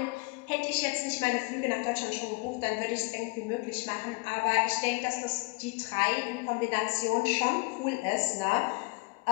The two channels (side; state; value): right; quieter; 28.1 dB